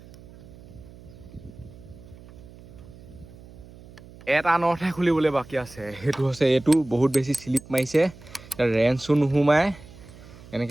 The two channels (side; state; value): right; noise; hum, 20 dB below the sound